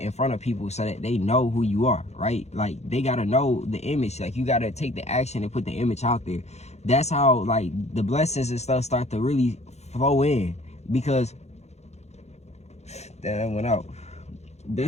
front of people so that they know who you are, right? Like they gotta know the image. Like you gotta take the action and put the image out there. That's how like the blessings and stuff start to really flow in, because that went out.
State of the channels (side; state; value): right; late; 0.32 ms